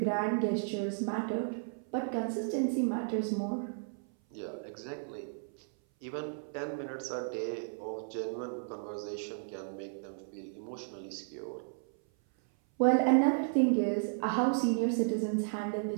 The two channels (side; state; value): left; silent; 55 dB below the other